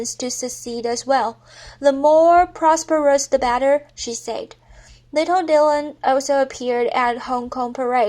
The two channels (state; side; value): identical; both; correlation 1.00